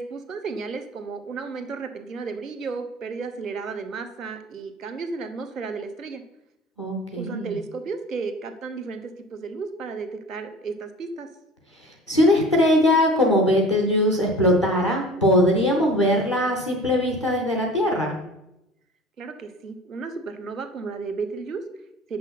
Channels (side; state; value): both; normal; correlation 0.42